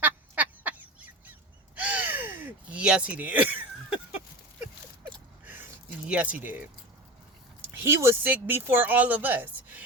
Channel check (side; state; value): both; normal; correlation 0.29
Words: Yes, he did. Yes, he did. He was sick before all of us.